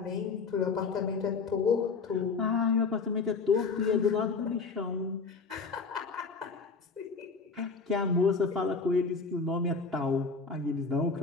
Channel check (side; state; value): right; quieter; 4.7 dB